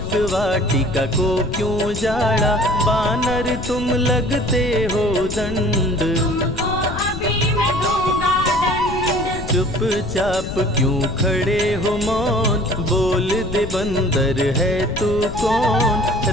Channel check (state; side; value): noise; left; rumble, 8 dB below the sound